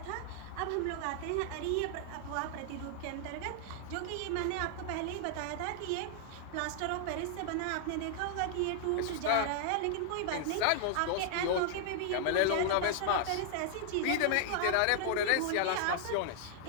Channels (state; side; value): different; both; correlation 0.00